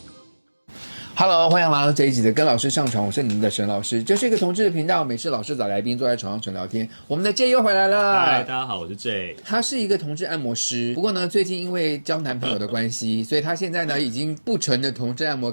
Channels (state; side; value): inverted; both; correlation -1.00